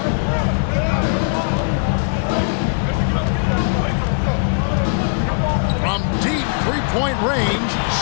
From deep three-point range,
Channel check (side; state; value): right; silent; digital silence